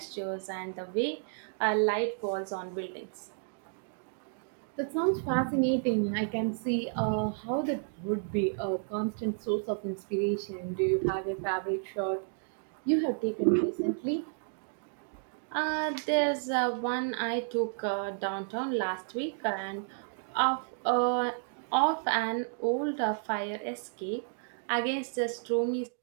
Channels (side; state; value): left; silent; digital silence